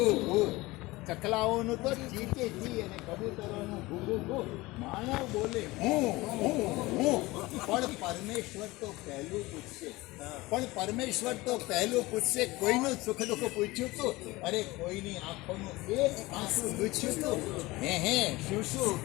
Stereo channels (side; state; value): right; quieter; 20.7 dB